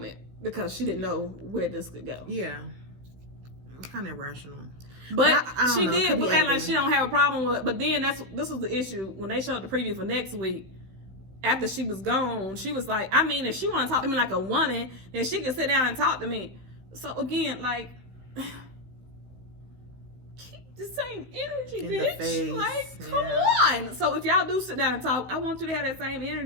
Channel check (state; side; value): late; left; 16 ms